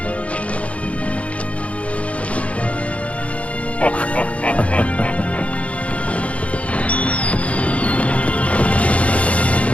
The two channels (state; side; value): late; right; 0.064 ms